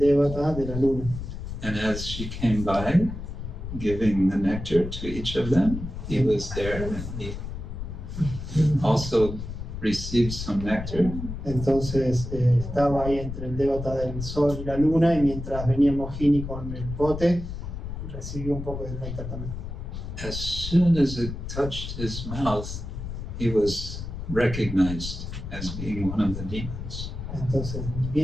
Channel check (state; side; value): noise; left; rumble, 7 dB below the sound